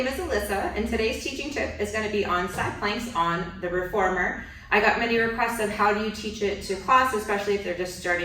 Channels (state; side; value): identical; both; correlation 1.00